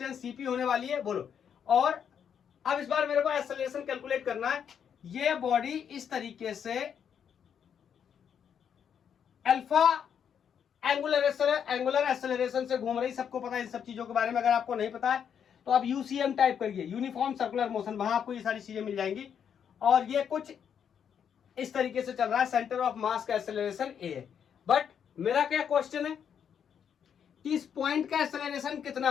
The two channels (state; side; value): quieter; right; 8.0 dB